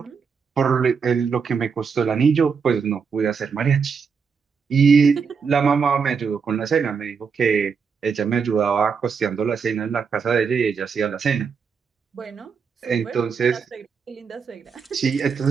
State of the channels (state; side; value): quieter; left; 5.9 dB